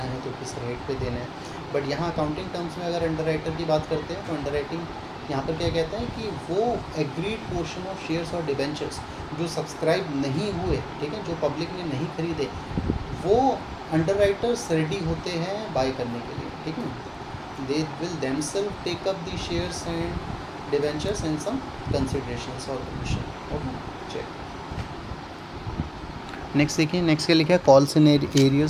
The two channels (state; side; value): identical; both; correlation 1.00